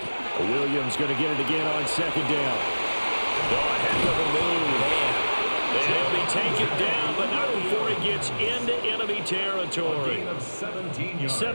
Williams going to get it again on 2nd down. Oh, heck of a move. And he'll be taken down, but not before he gets into enemy territory.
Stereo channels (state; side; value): inverted; both; correlation -1.00